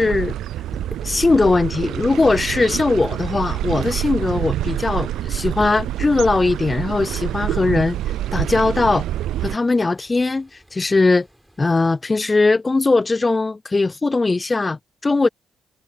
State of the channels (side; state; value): both; normal; correlation 0.90